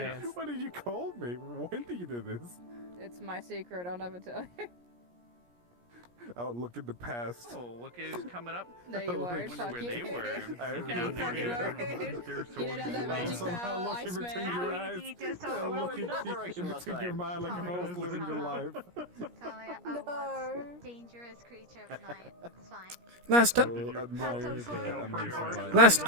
hands. what did you call me? When did you do this? It's my secret. I'll never tell you. I'll look at the past. Oh, look who's coming up. No, you I won't. wonder Fuck where you. they were. I You don't fucking won't. They're so You don't have that evil. magic Somehow power, looking Iceman. between your eyes. so I'm well looking in that deep direction in last between your time. mind like if I was living your life. Talia, a what dangerous creature of night. It's fine. Last I last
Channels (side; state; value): left; late; 17 ms